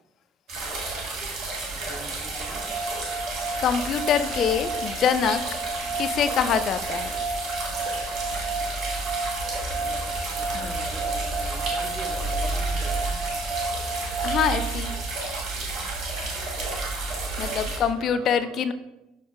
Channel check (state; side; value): normal; both; correlation 0.56